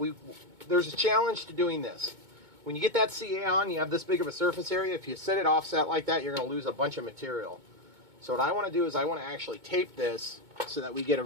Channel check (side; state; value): left; late; 2.2 ms